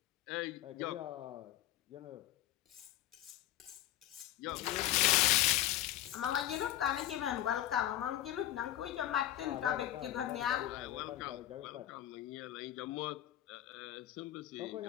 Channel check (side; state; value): right; quieter; 13.5 dB